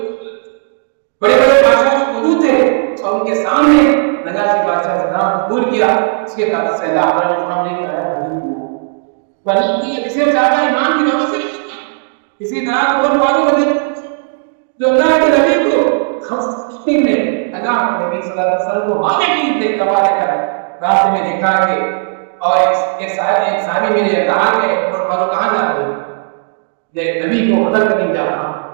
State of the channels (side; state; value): left; silent; digital silence